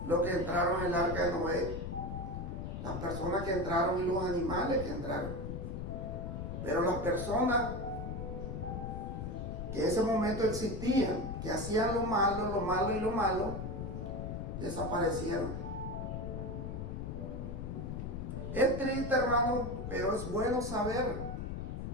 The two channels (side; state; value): left; noise; rumble, 5 dB below the sound